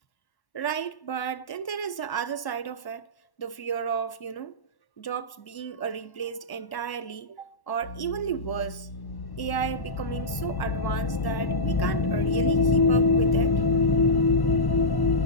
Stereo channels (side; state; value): right; late; 1.1 ms